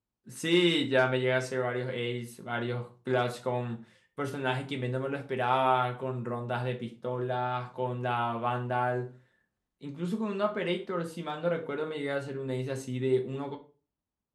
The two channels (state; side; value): identical; both; correlation 1.00